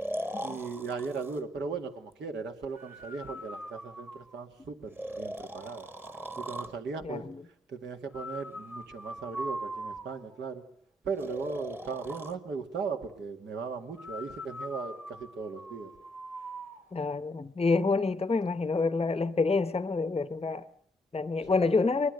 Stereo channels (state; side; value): normal; both; correlation 0.73